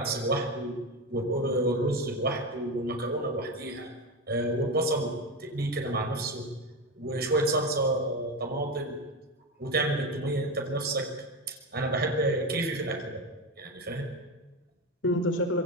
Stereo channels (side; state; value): both; normal; correlation 0.17